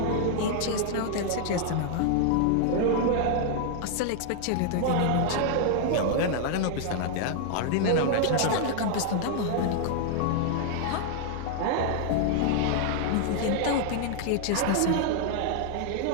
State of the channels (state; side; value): different; both; correlation 0.00